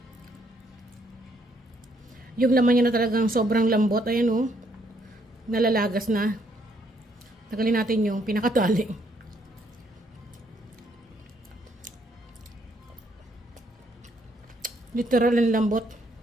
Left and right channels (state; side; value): normal; both; correlation 0.70